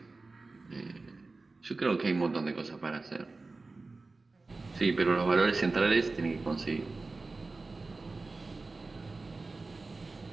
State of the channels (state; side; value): quieter; left; 3.6 dB